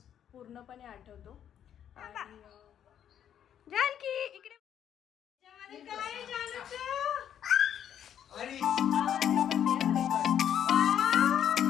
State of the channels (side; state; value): right; quieter; 9.6 dB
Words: पूर्णपणे आठवतो. आणि जानकी इकडे काय जानूचं